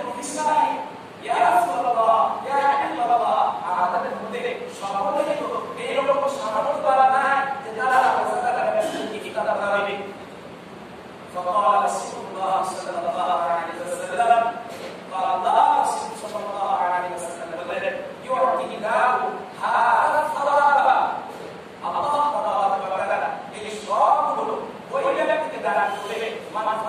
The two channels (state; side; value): identical; both; correlation 1.00